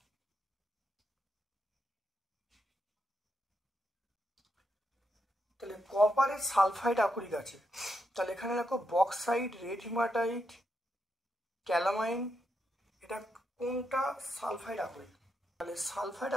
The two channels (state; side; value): normal; both; correlation 0.82